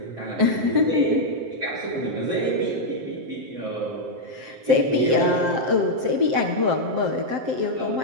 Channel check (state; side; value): late; left; 7.7 ms